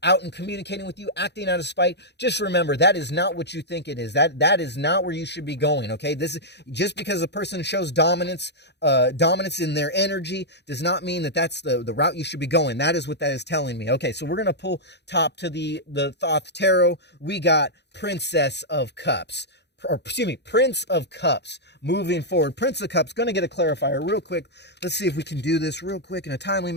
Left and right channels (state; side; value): late; right; 0.50 ms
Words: out and communicating with you, acting out of spite, just remember that is not what you think it is. That is not where you should be going. Okay, this is just because a person shows dominance in their energy does not mean that that's the route you should be going. That is what that is telling me. Okay, so we're gonna pull top to the Thoth Tarot. We got Princess of Cups. Or excuse me, Prince of Cups. Moving forward, Prince of Cups, going to get a clarifier real quick. Let's see if we can do this real quick in a timely